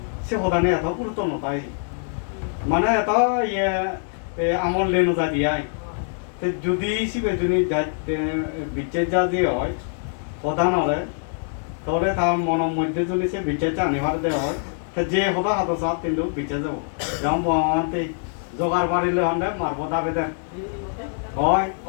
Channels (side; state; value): right; silent; 63 dB below the other